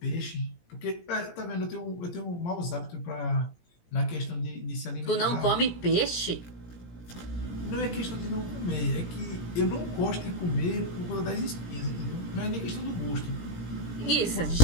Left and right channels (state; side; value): late; right; 17 ms